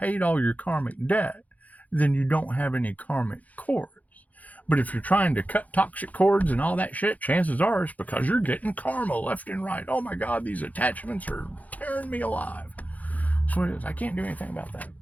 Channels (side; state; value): right; late; 0.076 ms